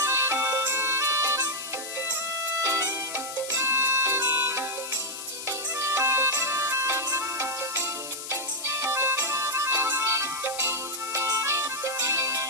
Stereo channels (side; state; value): left; noise; hiss, 9 dB below the sound